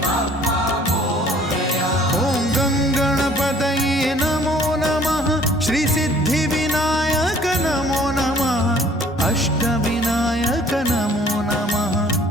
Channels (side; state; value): both; normal; correlation 0.55